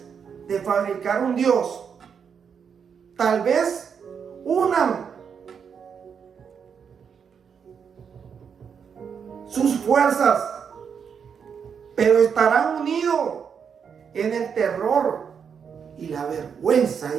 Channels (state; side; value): quieter; left; 6.9 dB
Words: de fabricar un Dios. Tal vez unan sus fuerzas, pero estarán unidos en el terror y la vergüenza,